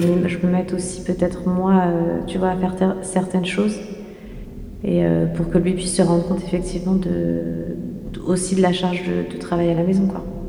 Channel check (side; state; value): both; identical; correlation 1.00